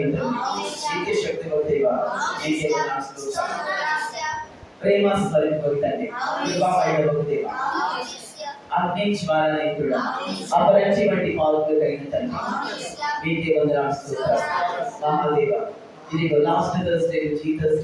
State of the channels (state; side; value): identical; both; correlation 1.00